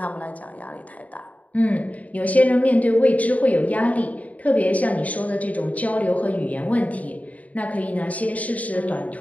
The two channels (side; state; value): right; late; 0.071 ms